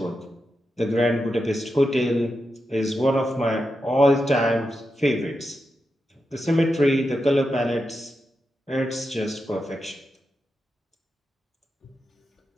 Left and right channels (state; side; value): normal; both; correlation 0.88